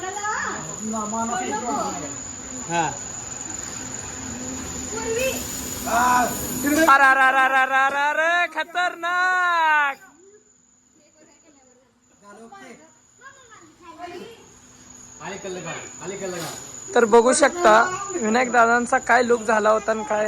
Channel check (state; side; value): identical; both; correlation 1.00